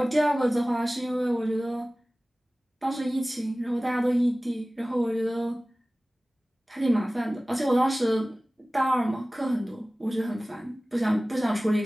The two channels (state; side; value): normal; both; correlation 0.98